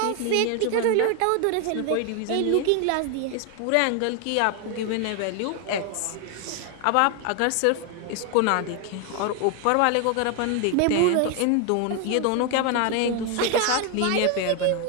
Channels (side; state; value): both; different; correlation 0.01